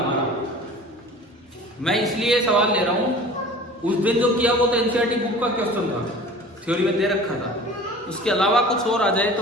मैं इसलिए सवाल ले रहा हूं, उस दिन जो किया वो तो एनसीईआरटी बुक का क्वेश्चन था, थ्योरी में दे रखा था। उसके अलावा कुछ और आ जाए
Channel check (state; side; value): normal; both; correlation 0.42